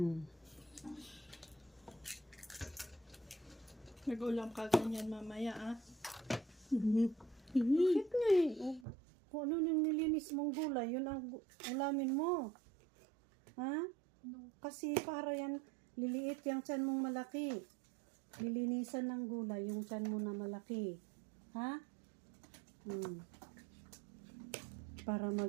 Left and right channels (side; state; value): left; drops out; at 8.8 s